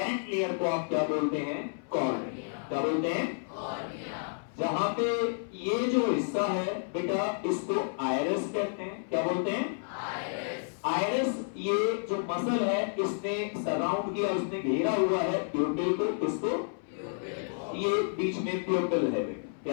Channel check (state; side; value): silent; right; 57 dB below the other